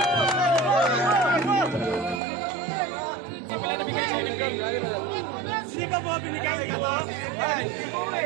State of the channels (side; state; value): left; drops out; at 2.2 s